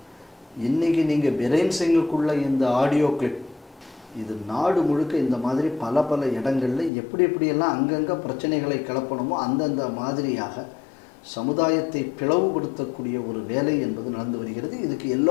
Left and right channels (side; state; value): right; drops out; at 6.9 s